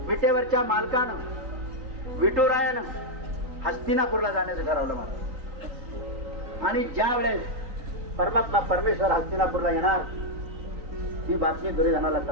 विटेवरच्या मालकानं विठुरायानं हस्तिनापूरला जाण्याचं ठरवलं मला. आणि ज्या वेळेस परमात्मा परमेश्वर हस्तिनापूरला येणार ही बातमी दुर्योधनाला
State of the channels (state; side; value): late; left; 3.9 ms